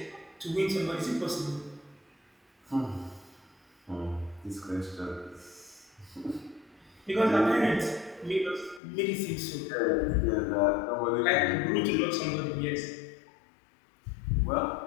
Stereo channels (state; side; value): drops out; right; at 8.8 s